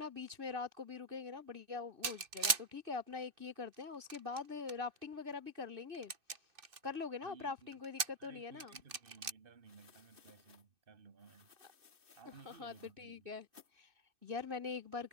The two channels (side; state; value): left; late; 2.6 ms